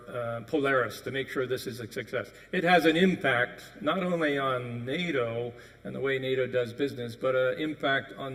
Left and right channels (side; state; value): both; identical; correlation 1.00